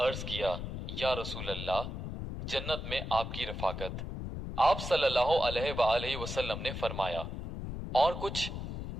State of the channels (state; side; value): noise; left; rumble, 6 dB below the sound